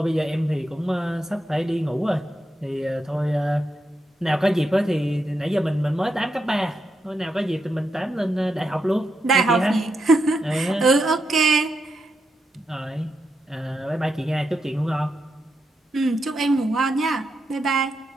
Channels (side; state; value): both; normal; correlation 0.84